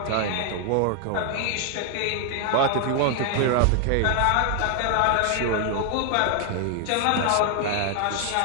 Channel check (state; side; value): different; both; correlation 0.00